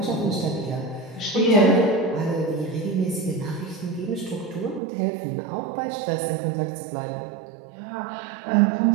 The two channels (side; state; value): left; drops out; at 4.8 s